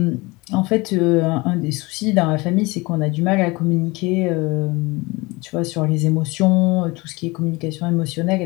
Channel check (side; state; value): right; quieter; 24.1 dB